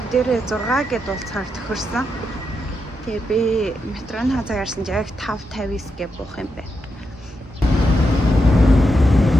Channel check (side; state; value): both; normal; correlation 0.84